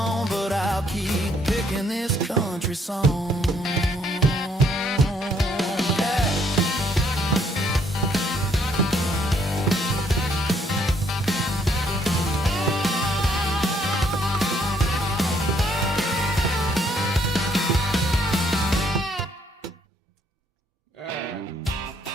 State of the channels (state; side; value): normal; both; correlation 0.68